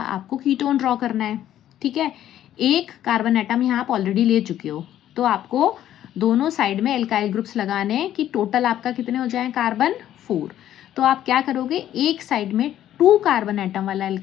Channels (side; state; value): right; quieter; 11.8 dB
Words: कीटोन ड्रॉ करना है, ठीक है। एक कार्बन एटम यहाँ आप ऑलरेडी ले चुके हो, तो आपको दोनों साइड में एल्काइल ग्रुप्स लगाने हैं कि टोटल आपका कितने हो जाए कार्बन? 4। तो आप क्या करोगे, एक साइड में 2 कार्बन एटम वाला